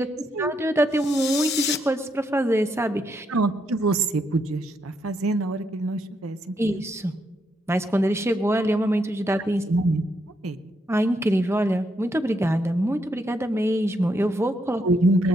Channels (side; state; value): both; normal; correlation 0.77